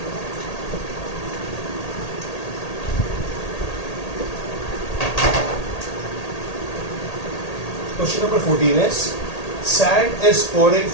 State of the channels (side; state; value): right; late; 1.8 ms